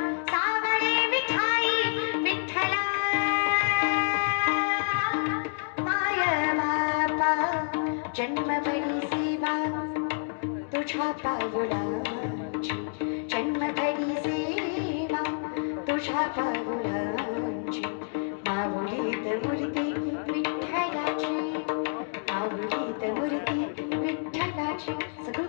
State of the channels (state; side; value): silent; right; digital silence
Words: जन्मभरी सेवा तुझ्या पावलांची जन्मभरी सेवा तुझ्या पावलांची माऊलीत मूर्ती विठ्ठलाची माऊलीत मूर्ती विठ्ठलाची सगळं